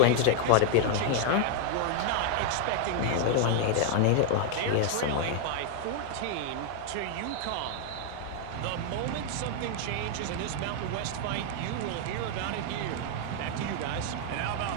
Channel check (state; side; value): different; both; correlation 0.00